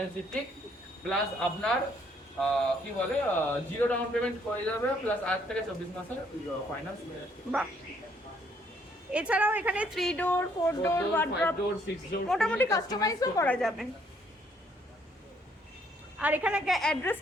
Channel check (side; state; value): both; normal; correlation 0.67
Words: plus আপনার কি বলে 0 ডাউন পেমেন্ট করে যাবে, প্লাস 8 থেকে 24 মাসের ফাইন্যান্স। বাহ। এছাড়াও এখানে 3 ডোর 4 ডোর ওয়ার্ড্রপ মোটামুটি কাস্টমাইজও করা যাবে। আর এখানে